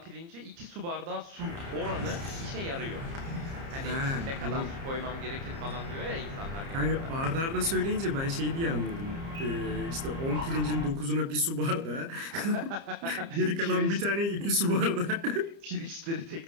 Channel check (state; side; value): late; left; 30 ms